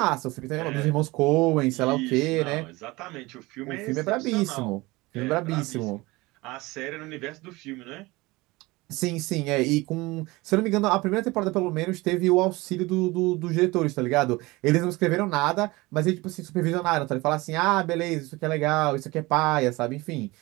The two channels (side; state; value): left; quieter; 21.9 dB